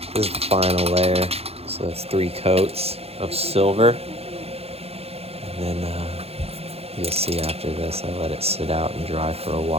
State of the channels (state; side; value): late; left; 0.29 ms